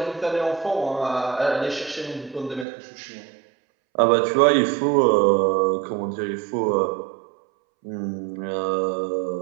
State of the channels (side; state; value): left; drops out; at 2.7 s